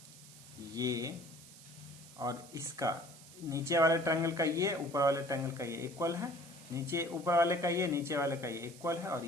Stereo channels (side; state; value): right; noise; hiss, 19 dB below the sound